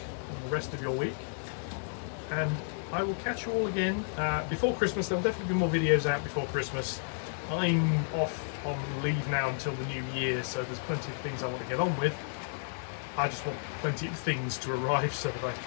the rest of your week, and I will catch you all again before Christmas. There'll definitely be more videos out before Christmas. I'm off on leave now until the new year, so there's plenty of things I want to get on with. I just want plenty of things to arrive so that I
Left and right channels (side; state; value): right; silent; 56 dB below the other